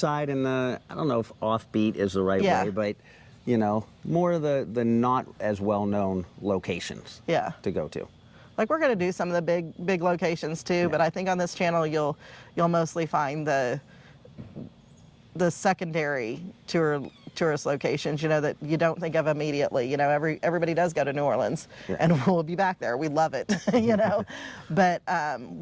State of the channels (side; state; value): both; identical; correlation 1.00